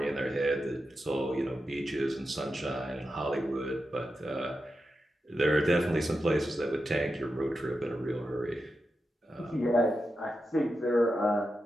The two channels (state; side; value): normal; both; correlation 0.89